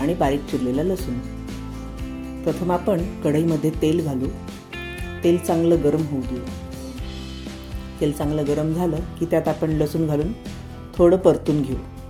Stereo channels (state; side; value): identical; both; correlation 1.00